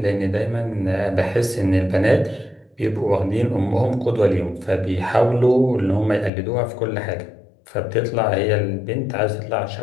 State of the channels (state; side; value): drops out; right; at 6.3 s